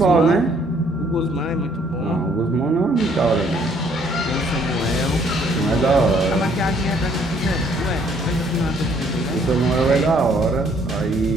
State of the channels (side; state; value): both; normal; correlation 0.64